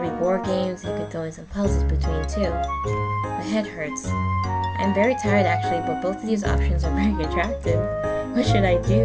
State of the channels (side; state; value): both; identical; correlation 1.00